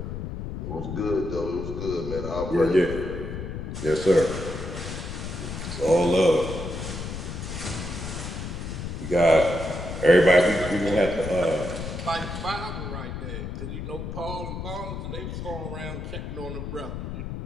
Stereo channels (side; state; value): left; noise; rumble, 6 dB below the sound